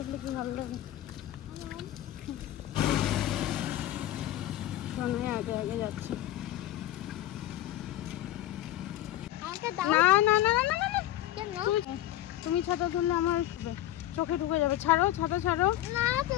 কি ভালো লাগে। আগে আগে যাচ্ছে। না না না না না না, তুমি ছাতা ধরলে আমার চোখে ঢুকে যাবে। ছাড়ো ছাতা, ছাড়ো,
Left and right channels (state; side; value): quieter; right; 13.8 dB